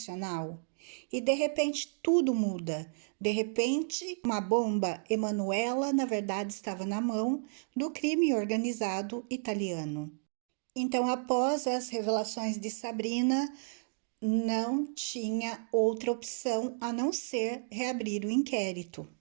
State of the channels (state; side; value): silent; left; digital silence